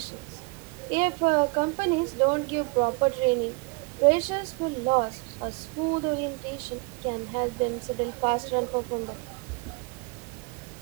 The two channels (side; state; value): left; quieter; 28.5 dB